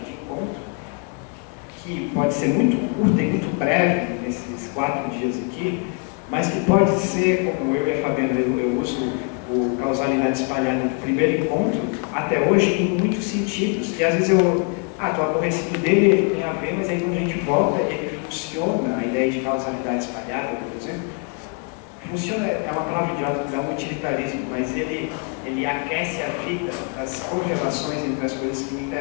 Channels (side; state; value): right; quieter; 35.9 dB